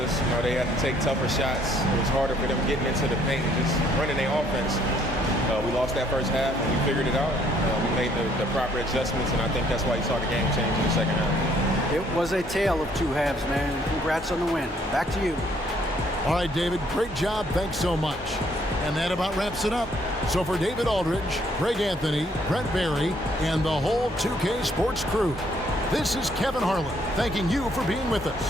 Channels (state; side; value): normal; both; correlation 0.65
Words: They had to take tougher shots. It was harder for them getting into the paint and just running their offense. We lost that first half, and we figured it out. We made the proper adjustments, and I think that's why you saw the game change in the second half. It was a tale of two halves, man. Congrats on the win. Back to you. All right, David, great job. Thanks so much. And that about wraps it up. So for David Aldridge, Greg Anthony, Brent Barry, and the whole 2K Sports crew, this is Kevin Harlan thanking you for being with